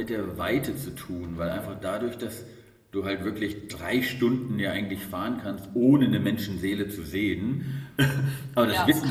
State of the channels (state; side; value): identical; both; correlation 1.00